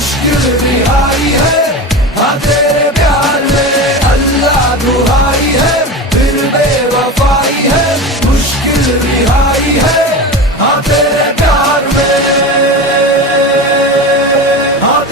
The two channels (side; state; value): both; normal; correlation 0.26